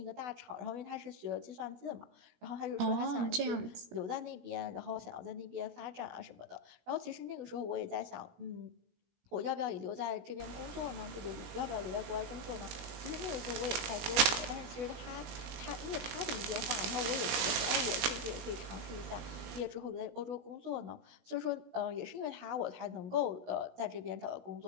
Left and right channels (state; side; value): late; left; 17 ms